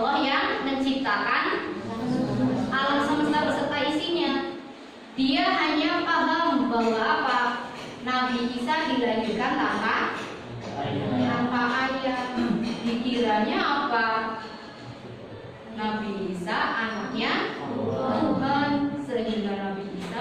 yang menciptakan alam semesta beserta isinya. Dia hanya paham bahwa apa? Nabi Isa dilahirkan tanpa ayah. Dikiranya apa? Nabi Isa anaknya Tuhan, sehingga Nabi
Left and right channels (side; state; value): both; identical; correlation 1.00